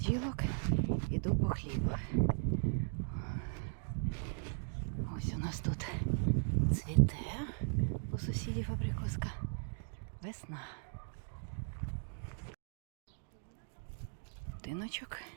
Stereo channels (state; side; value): silent; left; digital silence